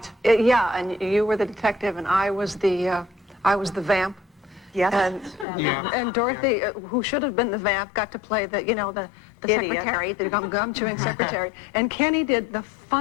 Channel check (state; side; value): drops out; right; at 5.5 s